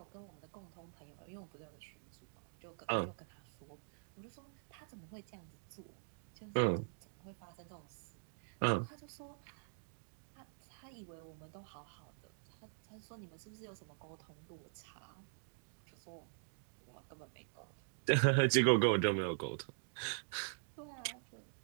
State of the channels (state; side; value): silent; left; digital silence